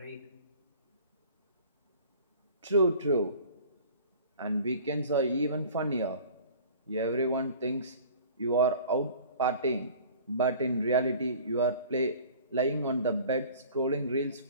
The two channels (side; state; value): both; inverted; correlation -0.46